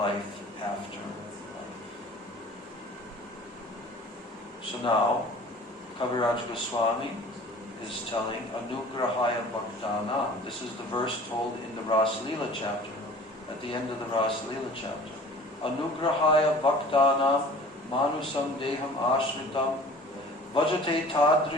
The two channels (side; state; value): both; normal; correlation 0.45